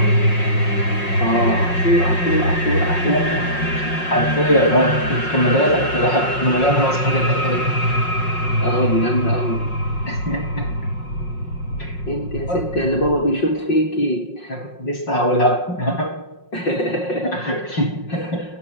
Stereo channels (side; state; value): right; late; 5.5 ms